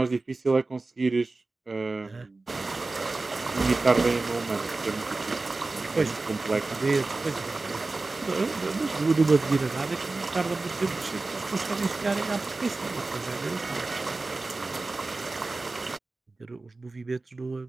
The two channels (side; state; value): left; quieter; 3.4 dB